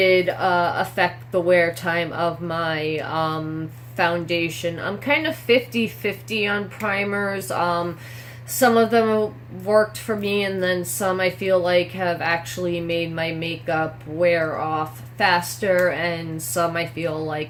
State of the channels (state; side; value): identical; both; correlation 1.00